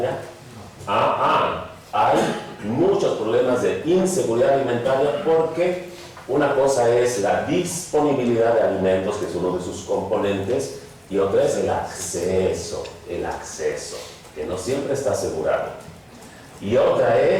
Hay muchos problemas de inseguridad alimentaria, porque una cosa es la disponibilidad de alimentos, que es uno de sus componentes, y otra es el acceso, que no siempre está asegurado. Y otra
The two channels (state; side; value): identical; both; correlation 1.00